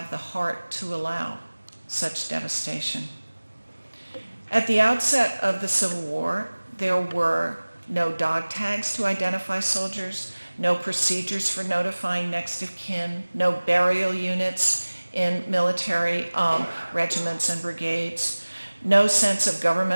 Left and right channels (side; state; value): both; inverted; correlation -1.00